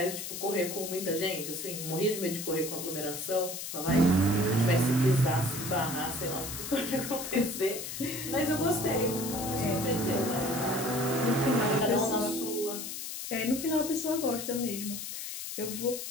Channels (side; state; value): left; noise; hiss, 7 dB below the sound